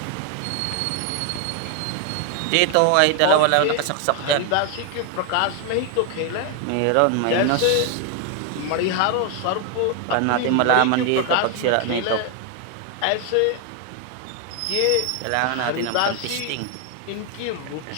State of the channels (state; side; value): different; both; correlation 0.01